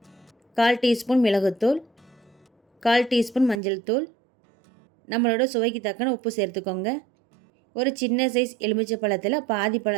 1/4 டீஸ்பூன் மிளகுத்தூள், 1/4 டீஸ்பூன் மஞ்சள் தூள், நம்மளோட சுவைக்கு தக்கன உப்பு சேர்த்துக்கோங்க. ஒரு சின்ன சைஸ் எலுமிச்சை பழத்தில் பாதி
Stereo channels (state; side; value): drops out; left; at 3.6 s